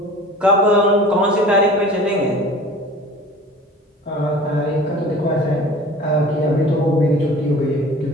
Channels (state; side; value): normal; both; correlation 0.43